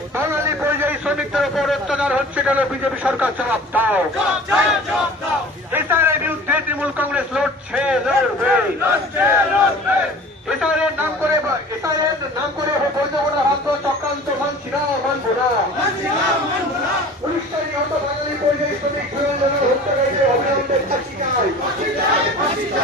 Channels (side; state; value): both; normal; correlation 0.43